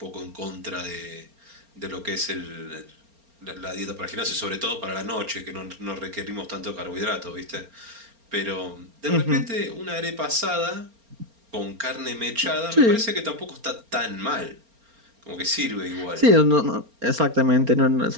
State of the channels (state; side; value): late; left; 4.3 ms